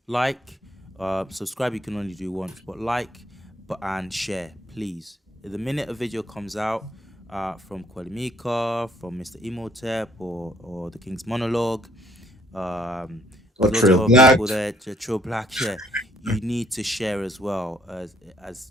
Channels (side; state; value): both; normal; correlation 0.65